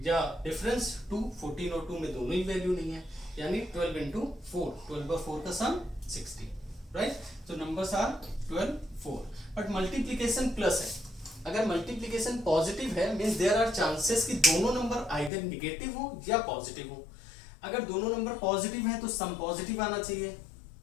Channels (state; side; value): drops out; right; at 15.3 s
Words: या डिफरेंस 2, 14 और 2 में दोनों ही वैल्यू नहीं है, यानी 12 इंटू 4, 12 और 4 का सम 60, राइट। तो numbers are 12, 4, but multiplication plus है। अगर मल्टीप्लीकेशन पॉजिटिव है मींस देयर आर चांसेस कि दोनों नंबर आइदर निगेटिव हो या पॉजिटिव हो। अगर दोनों नंबर पॉजिटिव हैं तो सम पॉजिटिव आना चाहिए,